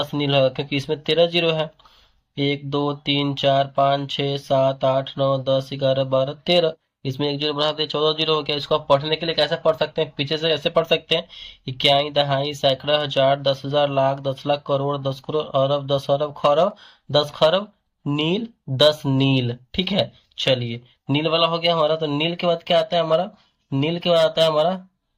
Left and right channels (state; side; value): identical; both; correlation 1.00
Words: नील होगा क्योंकि इसमें 13 जीरो है। 1 2 3 4 5 6 7 8 9 10 11 12 13। इसमें एक जीरो बढ़ा दे, 14 जीरो हो गया। इसको आप पढ़ने के लिए कैसे पढ़ सकते हैं, पीछे से ऐसे पढ़ सकते हैं, इक्याई दहाई सैकड़ा हजार 10,000 लाख 10 लाख करोड़ 10 करोड़ अरब 10 अरब खरब 10 खरब नील 10 नील। ठीक है, चलिए नील वाला हो गया हमारा। तो नील के बाद क्या आता है हमारा, नील के बाद आता है हमारा